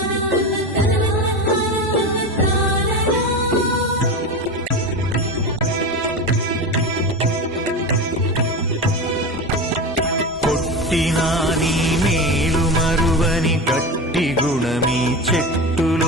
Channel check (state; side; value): normal; both; correlation 0.24